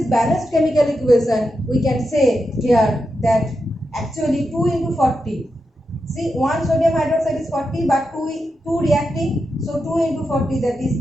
balanced chemical equation, we can say here that actually 2 into 40. See, 1 sodium hydroxide is 40, but 2 reacting, so 2 into 40, that is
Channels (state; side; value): normal; both; correlation 0.87